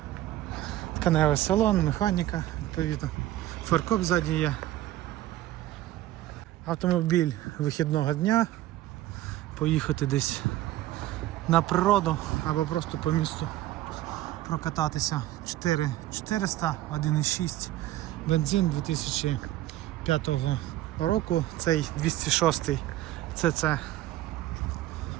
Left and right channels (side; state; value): left; quieter; 14.8 dB